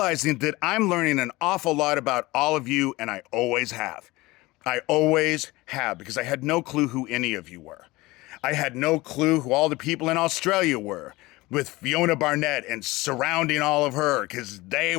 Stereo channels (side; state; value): right; quieter; 20.7 dB